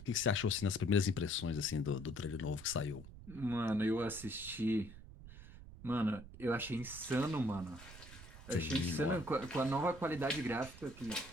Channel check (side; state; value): right; noise; rumble, 16 dB below the sound